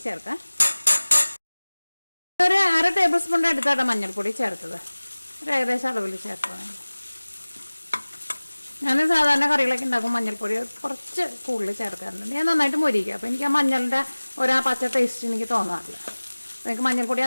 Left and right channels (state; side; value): inverted; both; correlation -1.00